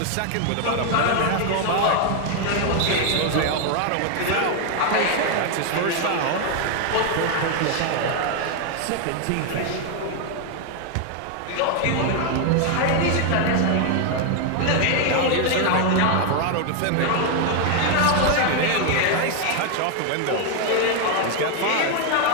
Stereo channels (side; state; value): both; different; correlation 0.01